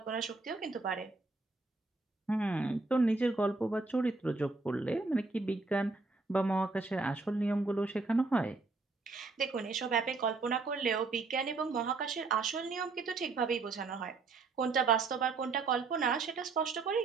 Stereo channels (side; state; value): left; quieter; 3.9 dB